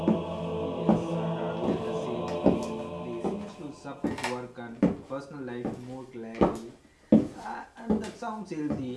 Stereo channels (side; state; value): both; identical; correlation 1.00